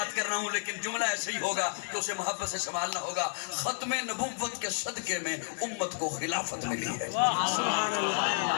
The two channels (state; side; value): silent; right; digital silence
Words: کر رہا ہوں، لیکن جملہ ایسا ہی ہوگا کہ اسے محبت سے سنبھالنا ہوگا۔ ختم نبوت کے صدقے میں امت کو خلافت ملی ہے،